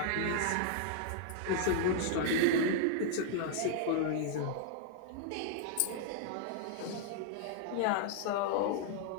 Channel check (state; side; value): different; both; correlation -0.01